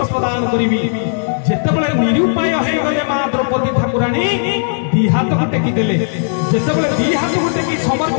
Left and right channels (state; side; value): silent; right; digital silence